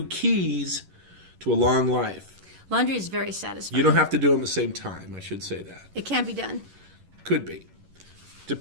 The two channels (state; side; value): late; left; 11 ms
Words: keys to a long life. Laundry is very satisfying. You don't have to do them at the same time. I should say that. It can be done. Could be,